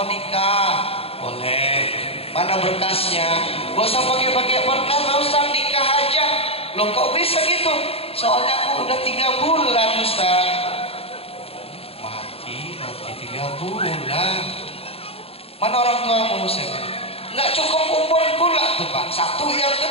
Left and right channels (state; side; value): late; right; 0.28 ms